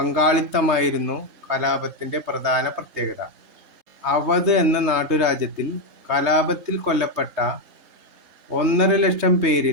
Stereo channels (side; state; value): left; late; 3.2 ms